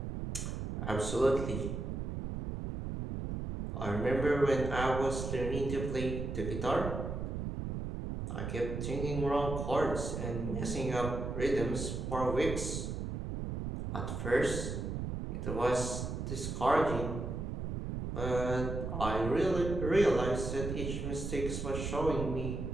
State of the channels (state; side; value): noise; right; rumble, 4 dB below the sound